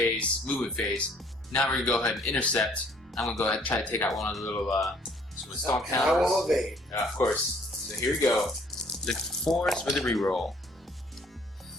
movement phase. Now we're going to go ahead and intercept. I'm going to go ahead and try to take out one of the little Storm And I will Talons. evade. Of course. So here we go. Look for 4s for the reroll.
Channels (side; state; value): both; normal; correlation 0.60